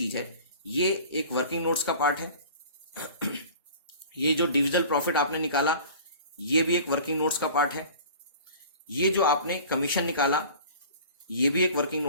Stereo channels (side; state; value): both; inverted; correlation -0.43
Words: है ये एक वर्किंग नोट्स का पार्ट है। ये जो डिविजिबल प्रॉफिट आपने निकाला ये भी एक वर्किंग नोट्स का पार्ट है। ये जो आपने कमीशन निकाला ये भी एक वर्किंग